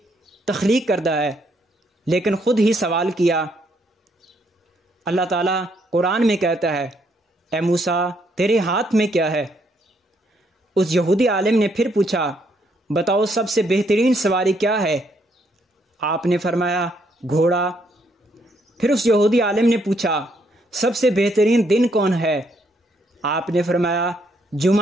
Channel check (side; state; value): both; normal; correlation 0.73